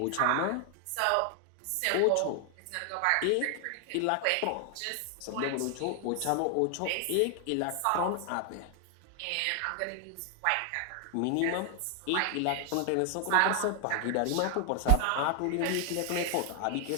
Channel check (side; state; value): both; different; correlation 0.00